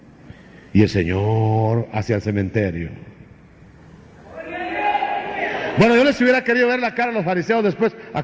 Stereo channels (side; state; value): both; identical; correlation 1.00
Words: Y el Señor hacia el cementerio. Bueno, yo les hubiera querido ver la cara a los fariseos después.